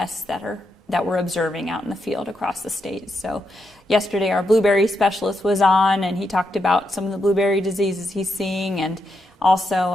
that we're observing out in the field across the state. So yesterday our blueberry specialist was on, and he talked about some of the blueberry diseases he's seeing, and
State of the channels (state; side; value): normal; both; correlation 0.83